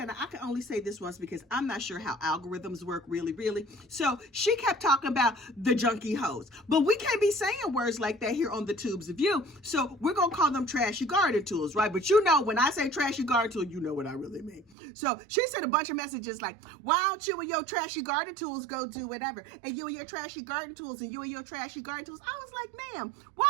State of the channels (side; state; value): left; drops out; at 14.7 s